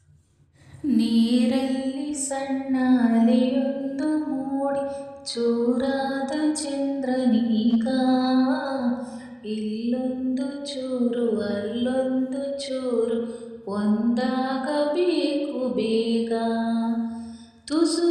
ನೀರಲ್ಲಿ ಸಣ್ಣ ಅಲೆಯೊಂದು ಮೂಡಿ ಚೂರಾದ ಚಂದ್ರನೀಗ, ಇಲ್ಲೊಂದು ಚೂರು ಅಲ್ಲೊಂದು ಚೂರು ಒಂದಾಗಬೇಕು ಬೇಗ. ತುಸು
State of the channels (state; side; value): identical; both; correlation 1.00